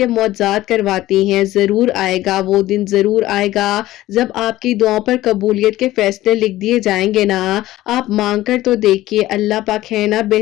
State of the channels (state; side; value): quieter; right; 15.9 dB